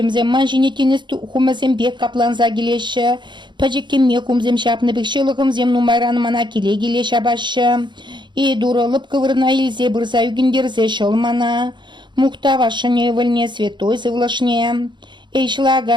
манжіне тенес хумызем бек капланза келеші. Пәжеккеме хумзем шапны бек шылығымзем нумайранымана келе келе шабашы. И дурылып кывырна елзе бұрза үгіндерзе шолмана. Мухтава шаневальне святой Всевышний.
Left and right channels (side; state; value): left; late; 0.22 ms